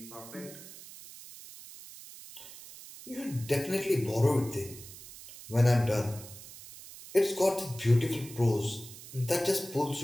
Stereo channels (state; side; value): noise; right; hiss, 16 dB below the sound